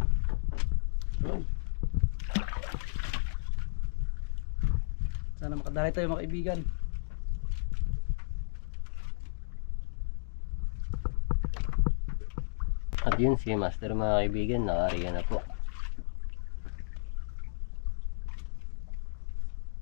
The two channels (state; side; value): silent; right; digital silence